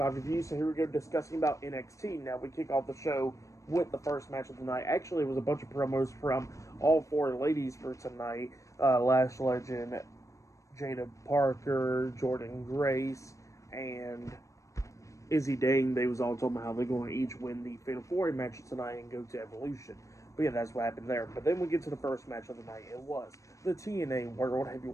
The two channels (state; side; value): late; right; 0.15 ms